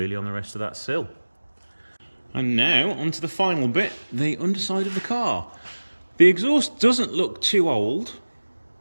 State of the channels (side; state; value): both; inverted; correlation -1.00